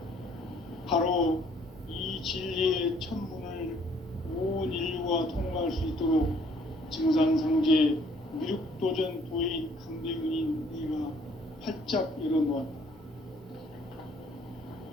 바로 이 진리의 첫 문을 온 인류가 통과할 수 있도록 증산상제 미륵도전 도인 강대근인 내가 활짝 열어놓았다.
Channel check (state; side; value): normal; both; correlation 0.62